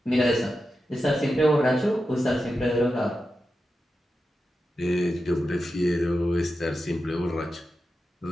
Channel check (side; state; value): both; normal; correlation 0.90